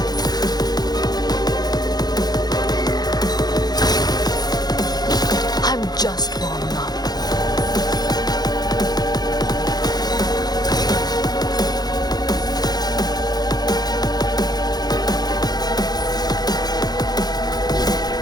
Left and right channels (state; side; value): late; right; 0.19 ms